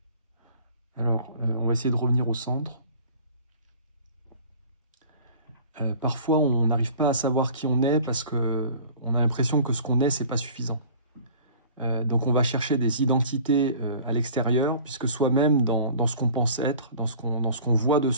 Alors, on va essayer de revenir au centre. Parfois, on n'arrive pas à savoir qui on est parce qu'on a l'impression que ce qu'on est, c'est pas suffisant. Donc, on va chercher des identités à l'extérieur, puisque soi-même, dans ce qu'on pense être, dans ce qu'on voit de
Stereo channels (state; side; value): inverted; both; correlation -0.46